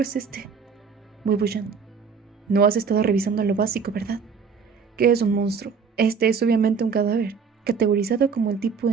es este? Wei Wuxian: no has estado revisando lo básico, ¿verdad? ¿Qué es un monstruo? Este es obviamente un cadáver, categorizado como el tipo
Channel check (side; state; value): left; quieter; 5.8 dB